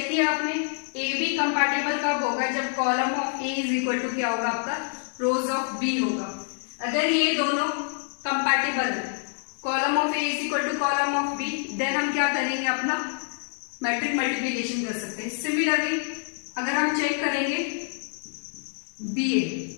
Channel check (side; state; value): right; silent; 61 dB below the other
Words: किया आपने, ए बी कंपैटिबल कब होगा? जब column of A is equal to क्या होगा आपका? रोज ऑफ बी होगा। अगर ये दोनों कंपैटिबल है, column of A is equal to column of B, then हम क्या करेंगे? अपना मैट्रिक मल्टीप्लिकेशन कर सकते हैं। सिमिलरली अगर हम चेक करेंगे B